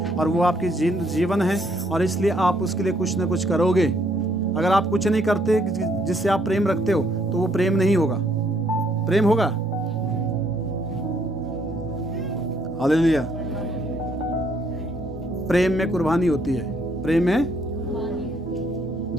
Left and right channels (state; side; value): normal; both; correlation 0.68